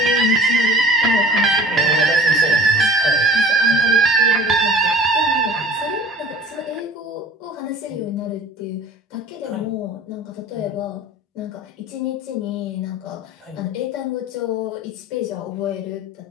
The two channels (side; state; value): both; normal; correlation 0.44